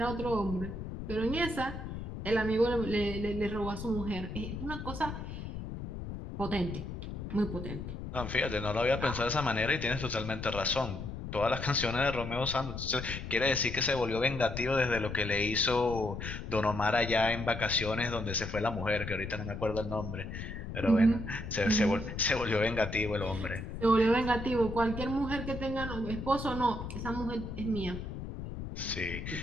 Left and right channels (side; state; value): left; noise; rumble, 7 dB below the sound